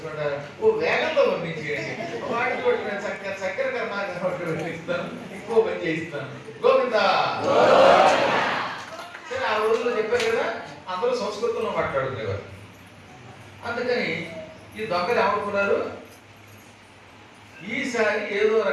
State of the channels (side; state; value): both; identical; correlation 1.00